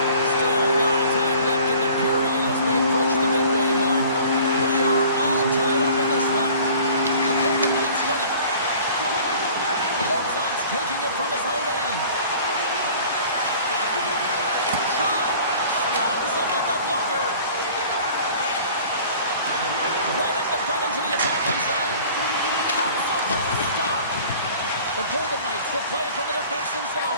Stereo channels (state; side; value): inverted; both; correlation -0.48